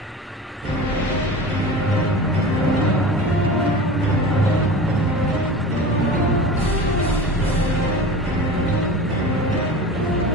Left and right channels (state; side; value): normal; both; correlation 0.34